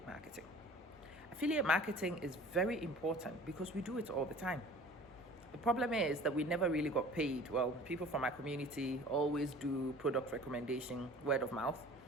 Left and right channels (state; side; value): normal; both; correlation 0.45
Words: marketing. Affiliate marketing is very important because we do it all the time. The problem is that we never really got paid. Well, people from our community always do product recommendation, word of mouth,